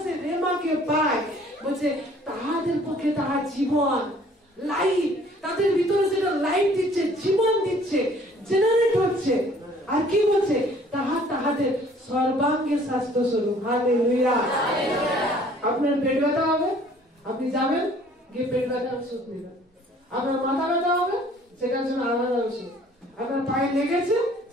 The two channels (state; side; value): normal; both; correlation 0.56